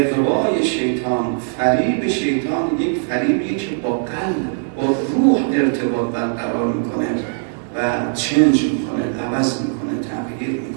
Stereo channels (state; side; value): silent; left; digital silence